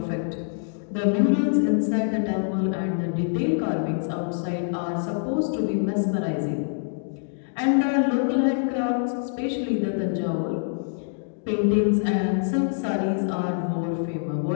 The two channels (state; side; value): silent; right; digital silence